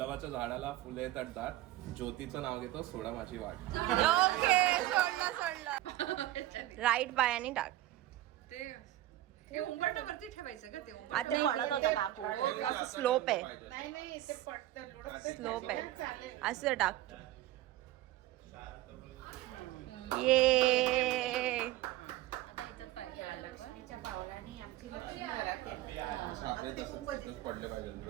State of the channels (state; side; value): quieter; left; 15.2 dB